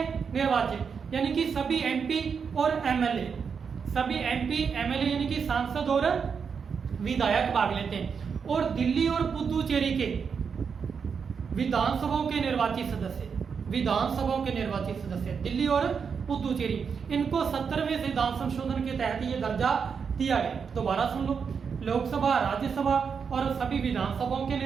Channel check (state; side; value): quieter; left; 6.2 dB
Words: निर्वाचित, यानी कि सभी एमपी और एमएलए, सभी एमपी एमएलए यानी कि सांसद और विधायक भाग लेते हैं। और दिल्ली और पुदुचेरी के विधानसभाओं के निर्वाचित सदस्य, दिल्ली और पुदुचेरी, इनको 70वें संविधान संशोधन के तहत ये दर्जा दिया गया। दोबारा सुन लो, लोकसभा, राज्यसभा और सभी विधानसभाओं के